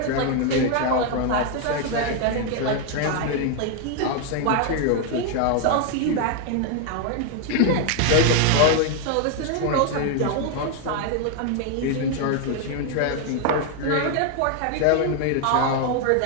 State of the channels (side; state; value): both; different; correlation 0.00